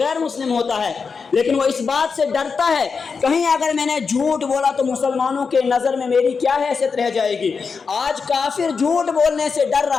مسلم ہوتا ہے، لیکن وہ اس بات سے ڈرتا ہے کہیں اگر میں نے جھوٹ بولا تو مسلمانوں کے نظر میں میری کیا حیثیت رہ جائے گی۔ آج کافر جھوٹ بولنے سے ڈر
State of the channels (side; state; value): right; quieter; 5.3 dB